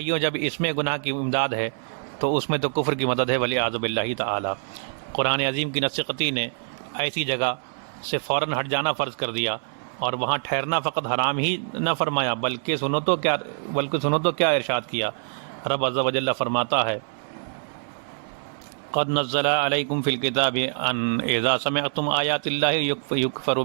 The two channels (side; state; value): left; silent; 62 dB below the other